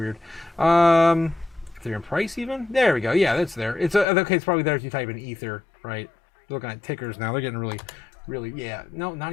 price even? There we go. Yeah, that's there. It's okay. It's probably there if you type in Ether, right? Looking at tickers now. They're getting really, yeah. No,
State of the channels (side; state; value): right; drops out; at 4.0 s